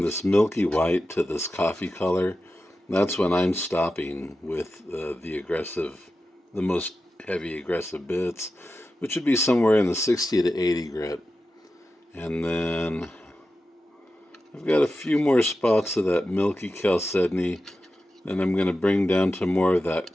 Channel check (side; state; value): both; normal; correlation 0.92